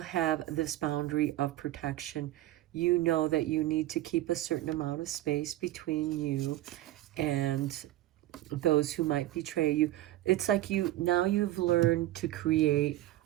this boundary of protection. You know that you need to keep a certain amount of space between you and those who might betray you. It's like now you've learned to create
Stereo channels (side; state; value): left; quieter; 15.3 dB